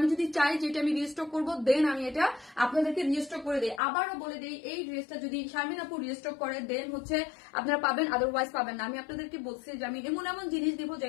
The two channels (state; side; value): drops out; right; at 3.8 s